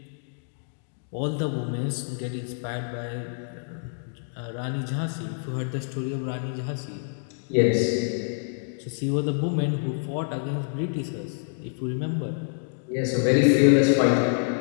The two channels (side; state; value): right; silent; digital silence